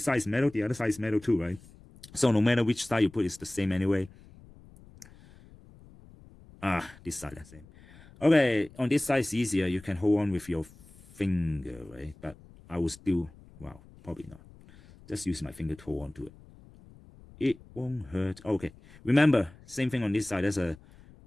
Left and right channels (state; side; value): noise; left; rumble, 23 dB below the sound